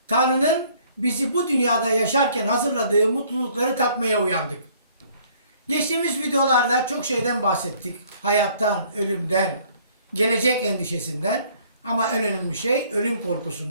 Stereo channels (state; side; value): inverted; both; correlation -0.60